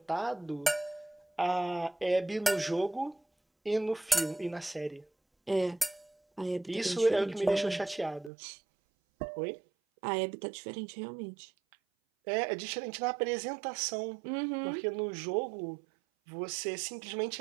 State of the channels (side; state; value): left; drops out; at 8.3 s